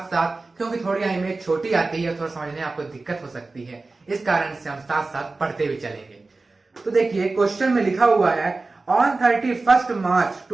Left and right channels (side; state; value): left; quieter; 3.5 dB